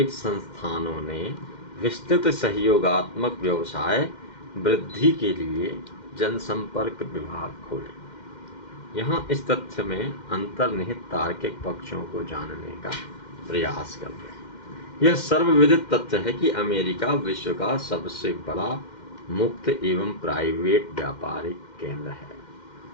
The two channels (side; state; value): right; late; 2.1 ms